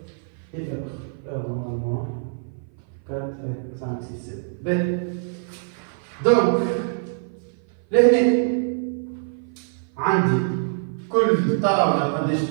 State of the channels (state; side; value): silent; left; 57 dB below the other